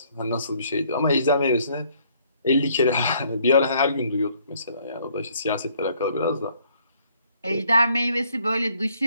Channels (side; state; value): both; inverted; correlation -0.65